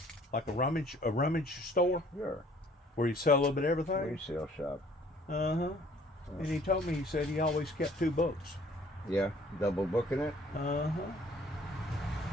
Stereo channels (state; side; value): normal; both; correlation 0.57